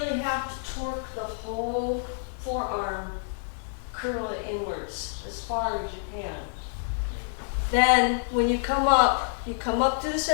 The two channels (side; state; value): right; silent; digital silence